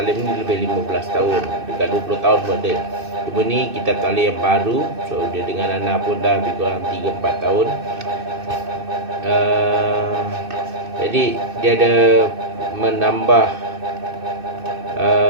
ni lebih 15 tahun, dekat 20 tahun pun ada. Cuma ni kitab taklim yang baru, so dia dengan Ana pun dah lebih kurang 3-4 tahun. Jadi dia ada menambah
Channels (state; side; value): late; left; 2.6 ms